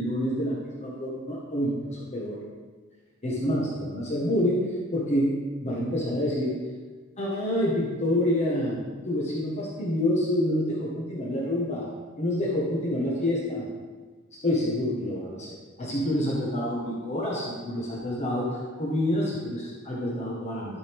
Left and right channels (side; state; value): both; normal; correlation 0.51